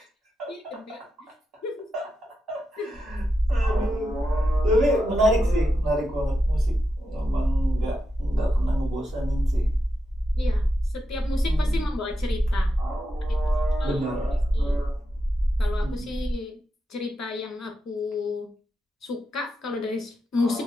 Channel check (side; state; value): both; normal; correlation 0.87